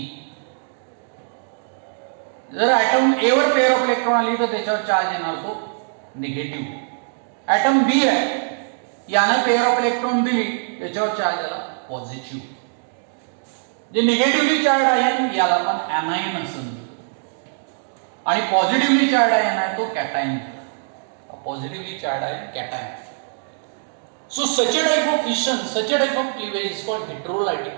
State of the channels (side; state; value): left; silent; digital silence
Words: जर ॲटम ए वर पेअर ऑफ इलेक्ट्रॉन आली तर त्याच्यावर चार्ज येणार तो निगेटिव्ह. ॲटम बी आहे याने पेअर ऑफ इलेक्ट्रॉन दिली त्याच्यावर चार्ज आला पॉझिटिव्ह. जे निगेटिव्हली चार्ज आहे याला आपण ॲनायन असं म्हणतो. आणि पॉझिटिव्हली चार्ज आयन आहे तो cation. Positively charge ion cation. So such a type of fission, such a type of cleavage is called